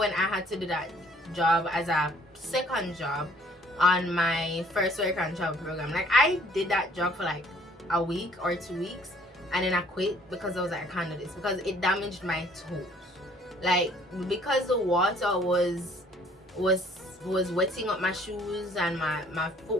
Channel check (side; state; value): both; normal; correlation 0.59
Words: I had to do that job as a second job on my first work and travel program. Like, I did that job for like a week or 2 weeks, and then I quit because I was like, I can't do this, because it damaged my toes. Like, because the water was wetting up my shoes, and my foot